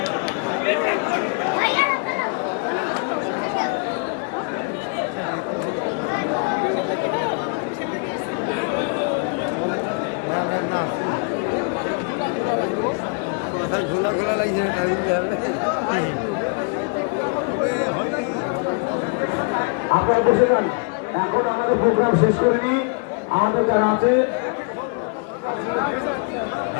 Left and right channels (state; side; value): quieter; right; 35.9 dB